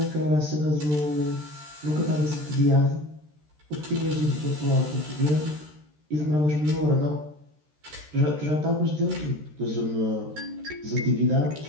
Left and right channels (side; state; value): left; late; 13 ms